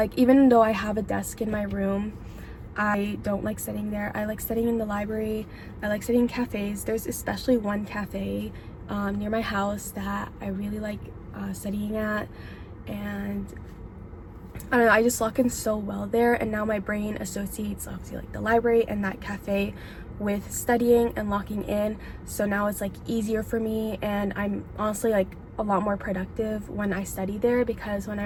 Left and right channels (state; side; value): identical; both; correlation 1.00